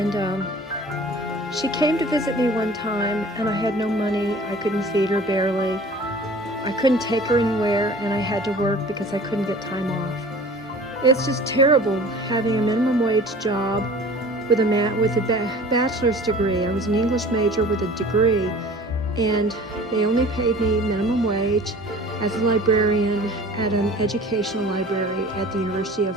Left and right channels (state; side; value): normal; both; correlation 0.44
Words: she came to visit me one time, and I had no money. I couldn't feed her barely. I couldn't take her anywhere, and I had to work because I couldn't get time off. It's just terrible having a minimum wage job with a bachelor's degree. I was an English major with a degree, and they only paid me minimum wage as a librarian at an educational library at the University